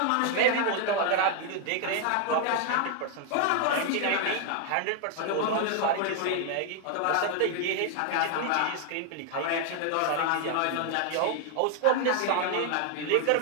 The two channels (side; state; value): both; different; correlation 0.00